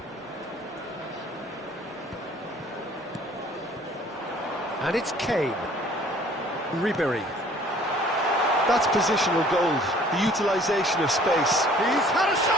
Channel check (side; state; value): both; normal; correlation 0.54